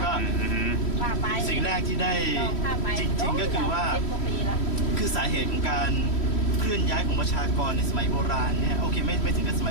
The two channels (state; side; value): late; right; 3.1 ms